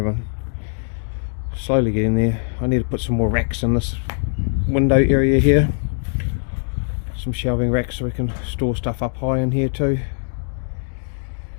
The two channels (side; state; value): right; silent; digital silence